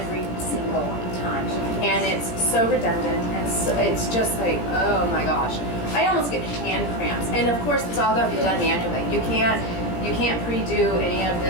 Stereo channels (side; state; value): right; late; 17 ms